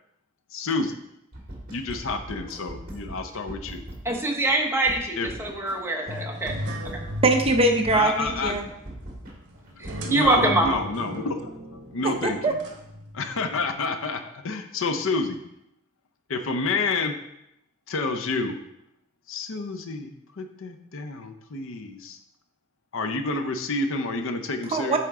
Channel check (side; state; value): both; normal; correlation 0.23